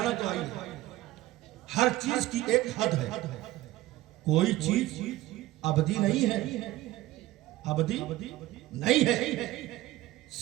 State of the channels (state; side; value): quieter; left; 16.7 dB